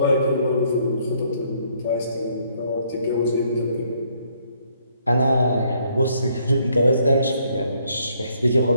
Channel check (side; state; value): both; inverted; correlation -0.68